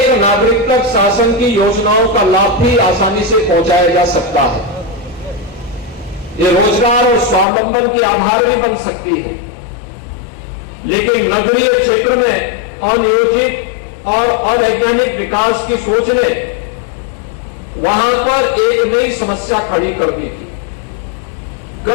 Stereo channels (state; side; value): drops out; right; at 7.5 s